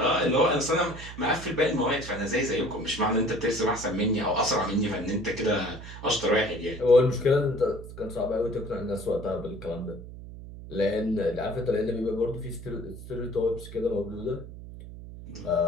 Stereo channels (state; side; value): noise; right; hum, 13 dB below the sound